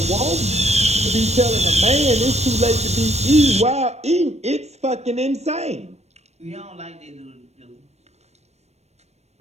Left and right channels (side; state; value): left; late; 0.31 ms